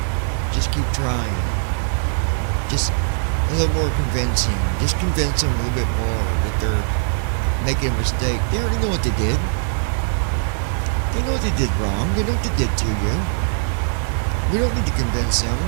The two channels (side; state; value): left; silent; digital silence